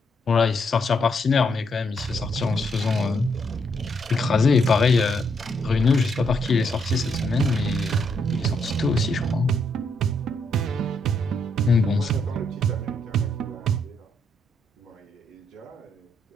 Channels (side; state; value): both; normal; correlation 0.76